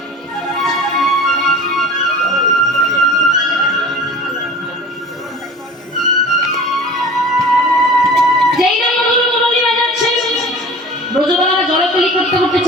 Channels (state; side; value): normal; both; correlation 0.40